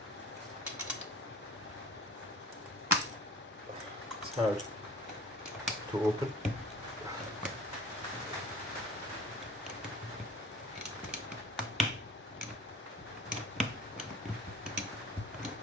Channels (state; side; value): normal; both; correlation 0.42